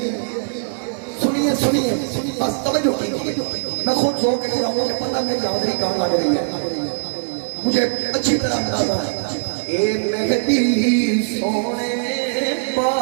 سنیے سنیے بس توجہ کیجیے میں خود سو کے رہا ہوں کہ پتہ میری حاضری کہاں لگ رہی ہے مجھے اچھی طرح اندازہ ہے اے مہدی سونے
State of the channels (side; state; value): left; silent; digital silence